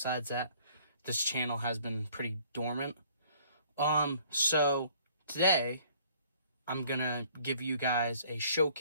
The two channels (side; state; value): both; inverted; correlation -0.57